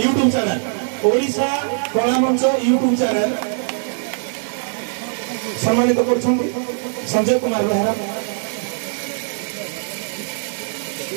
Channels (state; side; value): silent; left; digital silence